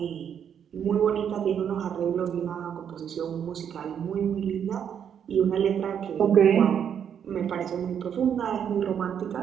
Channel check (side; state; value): left; quieter; 8.4 dB